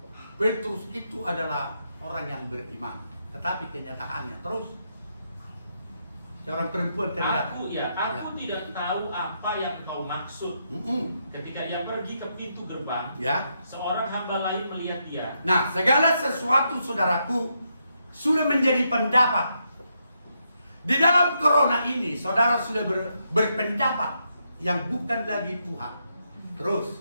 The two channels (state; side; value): inverted; both; correlation -0.80